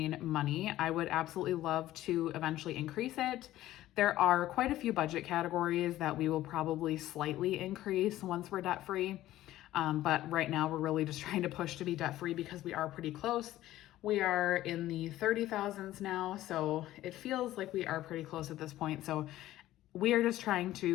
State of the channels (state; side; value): quieter; right; 14.7 dB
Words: money, I would absolutely love to eventually increase it. There are quite a few budget categories that we will probably slightly increase once we're debt free. But right now we're really just trying to push to be debt free because we are pretty close. We are in the 30,000s now, so it feels like we are pretty close at this point. So we are just trying